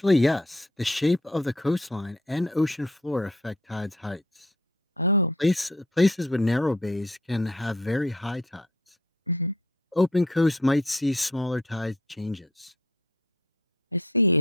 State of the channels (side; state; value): both; normal; correlation 0.56